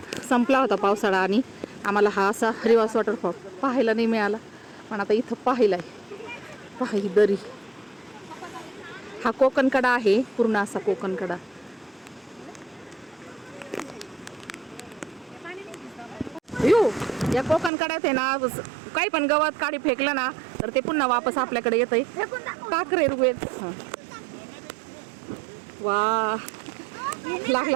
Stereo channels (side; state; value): left; drops out; at 17.7 s